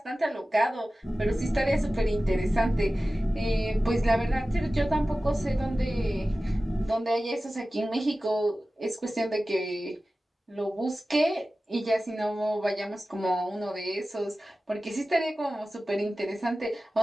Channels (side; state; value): both; normal; correlation 0.96